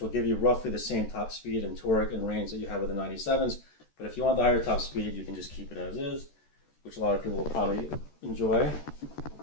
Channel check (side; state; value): right; late; 14 ms